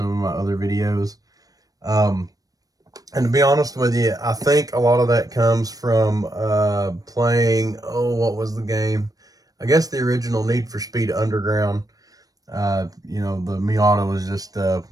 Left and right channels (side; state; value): left; late; 0.18 ms